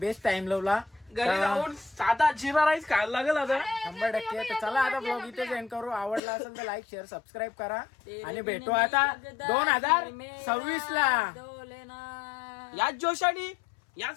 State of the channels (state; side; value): drops out; right; at 6.2 s